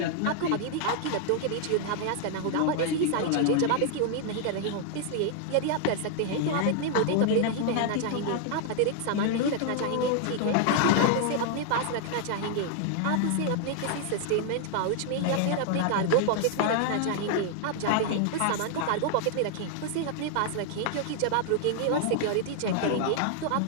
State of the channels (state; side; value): different; both; correlation 0.00